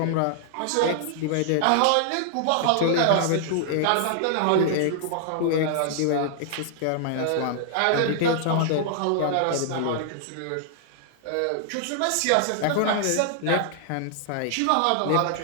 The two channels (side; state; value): both; different; correlation -0.01